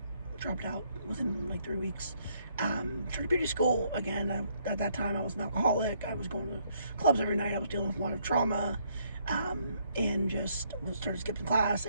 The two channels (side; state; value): both; inverted; correlation -0.70